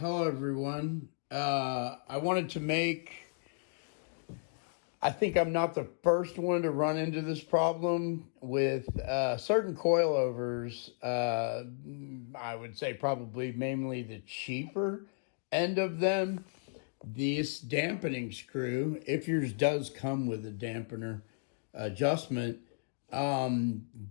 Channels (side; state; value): right; silent; digital silence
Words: everyone. I wanted to make, I think I'm not the first one to run into this problem with certain coilovers. I would say probably mainly the cheaper end of them. This dampening screw, if yours does come with a dampener adjustment,